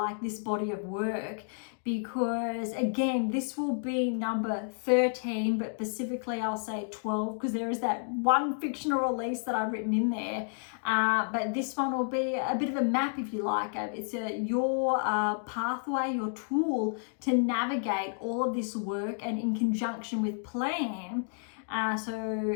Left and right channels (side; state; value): right; silent; digital silence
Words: this body of work, because again, this will be number 13, but specifically I'll say 12, because there is that one fictional release that I've written in there, but this one will be a bit of a map, if you like. It's your pathway, your tool to navigate all of this work, and in conjunction with plan, so